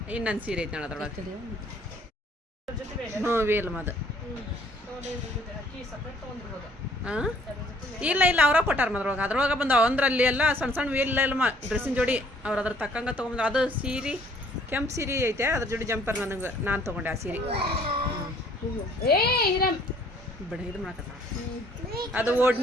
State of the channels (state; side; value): normal; both; correlation 0.60